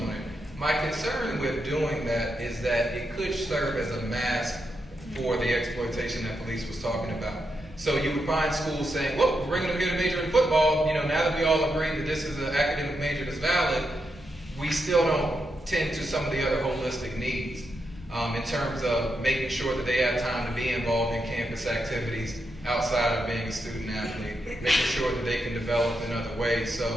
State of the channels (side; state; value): both; normal; correlation 0.84